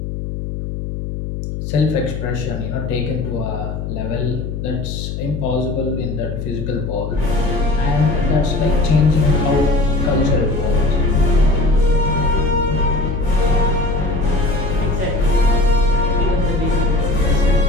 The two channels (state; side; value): noise; left; hum, 6 dB below the sound